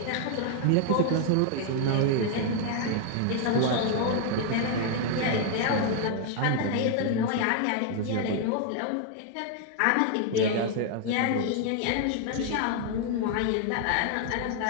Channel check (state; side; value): different; both; correlation 0.00